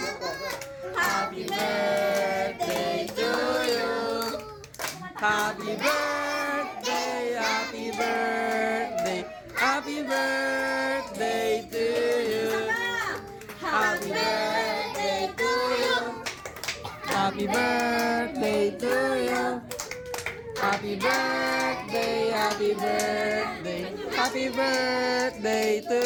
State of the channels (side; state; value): both; identical; correlation 1.00